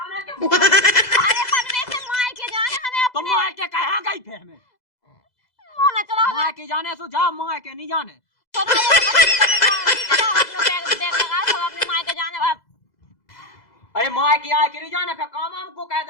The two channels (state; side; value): late; right; 2.0 ms